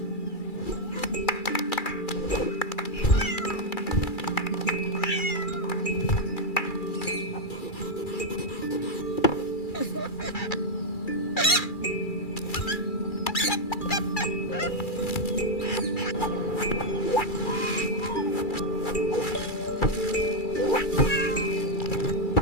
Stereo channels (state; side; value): late; right; 2.3 ms